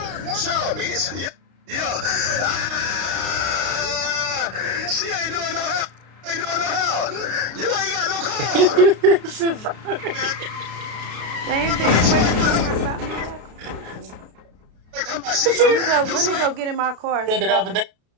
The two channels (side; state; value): left; late; 33 ms